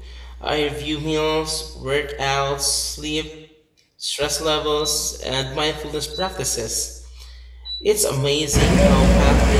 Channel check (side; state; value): both; identical; correlation 1.00